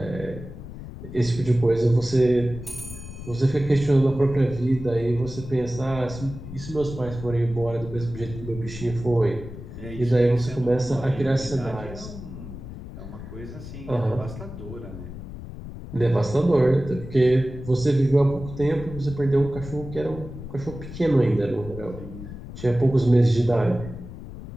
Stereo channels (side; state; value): left; noise; rumble, 12 dB below the sound